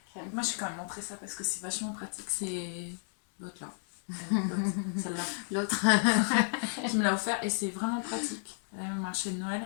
Moi j'ai quand même montré ça parce que c'est vachement pratique, c'est l'autre là, celle-là, l'autre qui me l'a offert et c'est vraiment pratique. Elle a marché de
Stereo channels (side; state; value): right; silent; 56 dB below the other